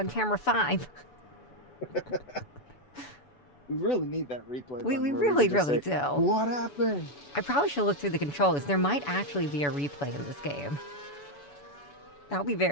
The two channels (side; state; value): right; late; 7.0 ms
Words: camera 5. We really need that replay. We really do. What happened? I probably should look through the controls. There might actually be a replay in this game. That would be